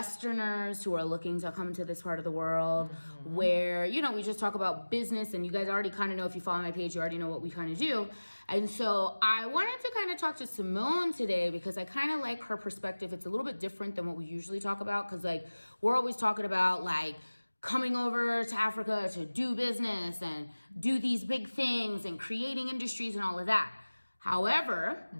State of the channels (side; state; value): both; inverted; correlation -1.00